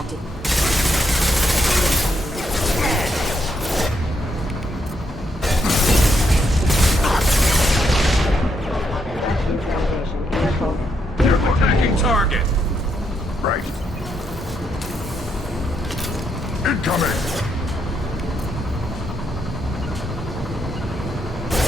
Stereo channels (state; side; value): normal; both; correlation 0.78